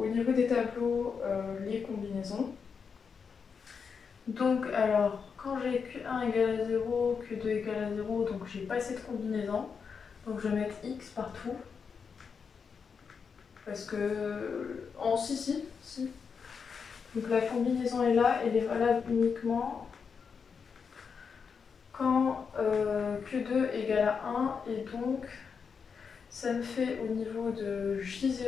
niveau des tableaux les combinaisons. Donc, alors, quand j'ai Q1 égale à 0, Q2 égale à 0, donc j'ai pas cette combinaison. Donc je vais mettre X partout. Parce que. Si. Donc la combinaison est là, elle est valable uniquement quand Q2 égale à 1, et donc ça me fait au niveau de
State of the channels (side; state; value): right; quieter; 5.9 dB